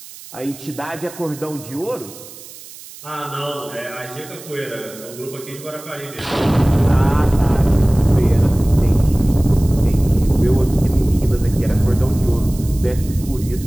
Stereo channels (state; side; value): noise; right; hiss, 17 dB below the sound